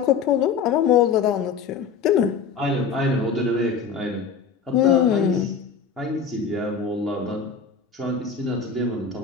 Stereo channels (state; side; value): quieter; right; 6.0 dB